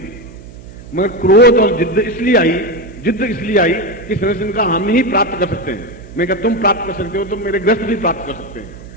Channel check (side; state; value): right; noise; hum, 18 dB below the sound